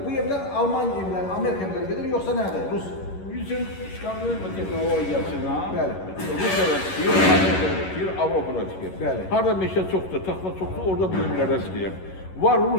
Bu evler Alman evler, Amerika evləri gedir yoksa nədir? Rus. Bizim Skandinaviya texnologiyasına Bəli. Rusiyada tikir, Amerikada tikir, Avropada tikir. Bəli. Harada meşə çoxdur, taxta çoxdur, orada bu evlərdə tikir. Var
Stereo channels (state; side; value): late; right; 11 ms